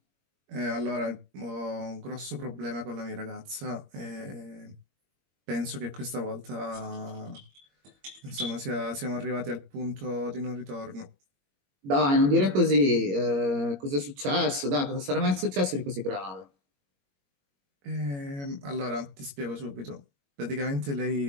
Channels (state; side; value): late; left; 21 ms